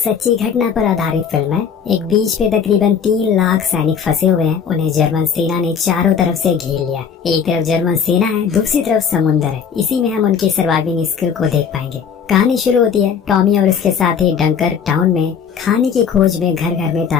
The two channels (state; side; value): quieter; right; 7.0 dB